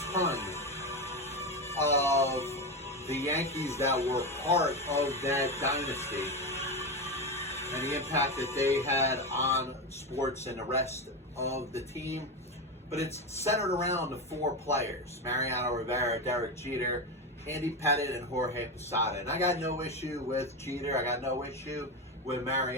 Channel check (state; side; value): normal; both; correlation 0.15